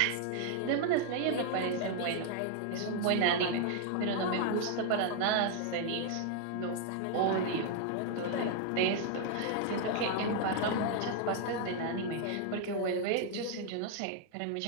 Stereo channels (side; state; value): both; different; correlation 0.00